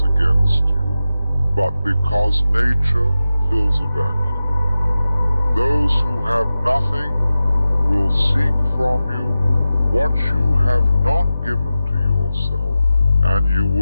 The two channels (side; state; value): both; inverted; correlation -0.94